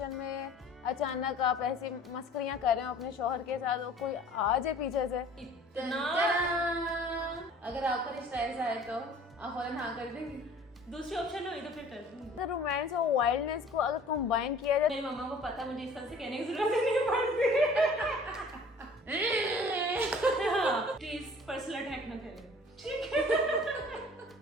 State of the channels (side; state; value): both; normal; correlation 0.49